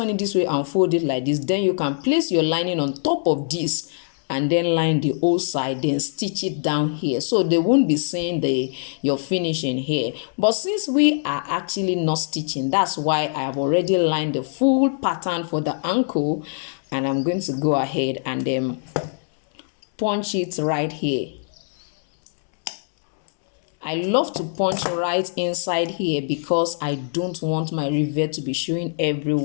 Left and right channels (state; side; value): silent; right; digital silence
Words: it this way and fold it like this, then you can place your lining on top of this and then line the whole side, then stitch it down here, so they won't be seeing your finishing here. But since we are actually not stitching, that's why I have already lined the full pattern for the ankle, and I'm going to go ahead and then punch it right here. I love to punch right inside here because I don't want my rivet to be showing